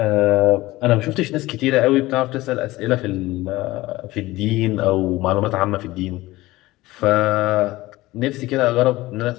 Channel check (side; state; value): right; quieter; 18.6 dB